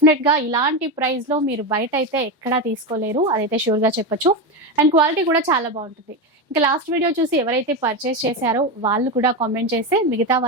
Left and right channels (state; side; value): normal; both; correlation 0.14